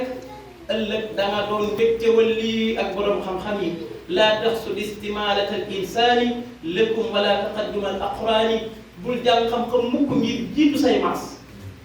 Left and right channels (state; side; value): identical; both; correlation 1.00